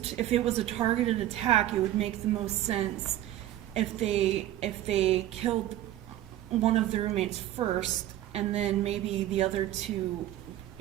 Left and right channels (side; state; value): left; quieter; 13.3 dB